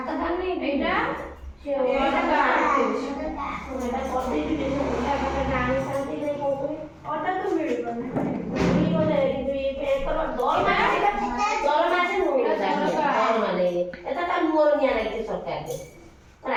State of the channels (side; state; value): both; identical; correlation 1.00